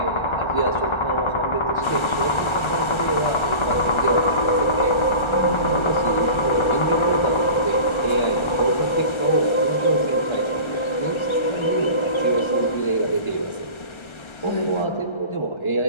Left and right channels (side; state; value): right; late; 1.3 ms